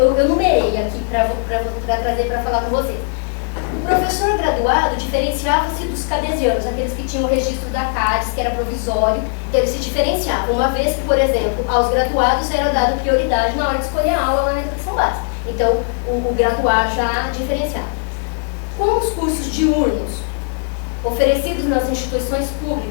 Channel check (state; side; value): silent; right; digital silence